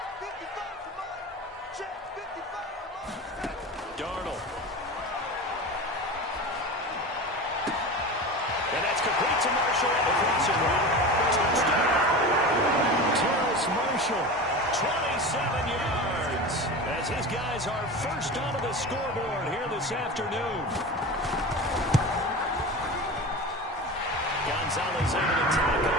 Darnold. And that's complete to Marshall at the crossing route. Touchdown. Terrace Marshall, 27 yards. As his guys are first onto the scoreboard here this afternoon. Gonzalez able to tack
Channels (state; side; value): normal; both; correlation 0.29